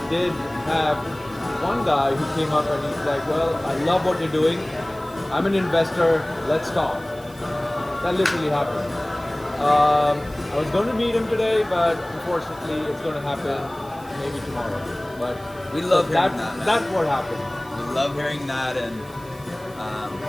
did have one guy who came up and he's like, well, I love what you're doing. I'm an investor. Let's talk. That literally happened. I was going to meet him today, but unfortunately it's going to happen maybe tomorrow. But We love hearing that, man. That's what happened. We love hearing that, and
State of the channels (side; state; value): right; noise; hiss, 23 dB below the sound